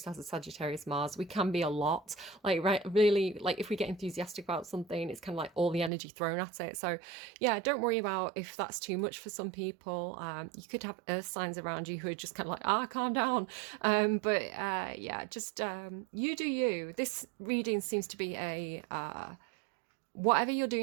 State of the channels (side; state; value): left; drops out; at 5.9 s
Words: has a Sagittarius Mars. We can be a lot. Like right really like if we get enthusiastic about something, it's kind of like all the energy thrown at it. So yeah, don't worry about if that's too much for some people. You could have earth signs around you who are just kind of like, calm down. Yeah, just you do you. This reading seems to be a whatever you're